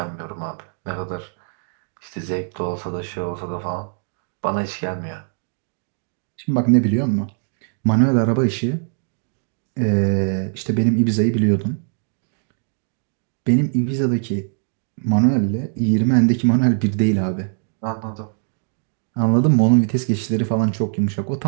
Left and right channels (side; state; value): left; silent; digital silence